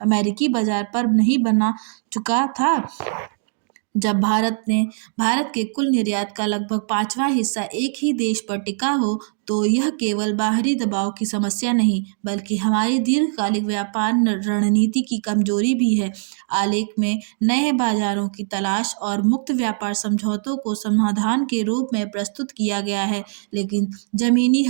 अमेरिकी बाजार पर नहीं बना चुका था। जब भारत के कुल निर्यात का लगभग 5वां हिस्सा एक ही देश पर टिका हो, तो यह केवल बाहरी दबाव की समस्या नहीं, बल्कि हमारी दीर्घकालिक व्यापार रणनीति की कमजोरी भी है। आलेख में नए बाजारों की तलाश और मुक्त व्यापार समझौतों को समाधान के रूप में प्रस्तुत किया गया है, लेकिन जमीनी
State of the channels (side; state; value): left; silent; digital silence